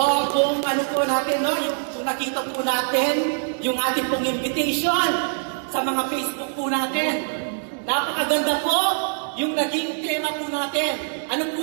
kung ano po natin, no, kung nakita po natin yung ating pong invitation sa mga Facebook po natin, napakaganda po yung naging tema po natin. Ano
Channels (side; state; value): left; silent; digital silence